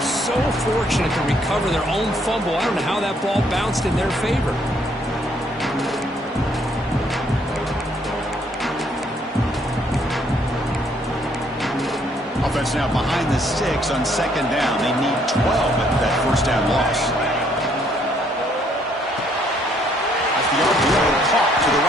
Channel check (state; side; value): normal; both; correlation 0.67